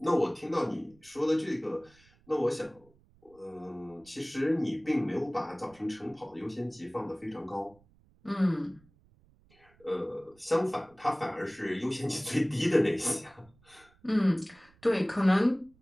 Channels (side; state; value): right; noise; rumble, 30 dB below the sound